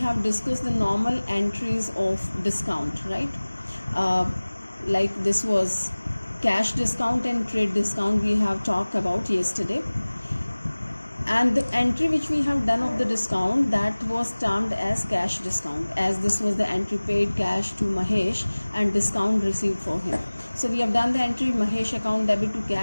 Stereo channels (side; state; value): both; inverted; correlation -1.00